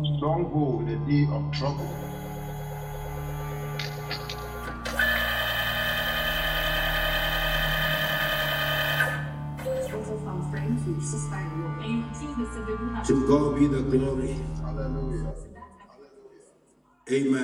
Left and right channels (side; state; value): both; identical; correlation 1.00